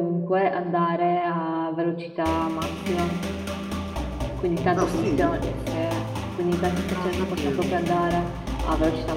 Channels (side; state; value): both; identical; correlation 1.00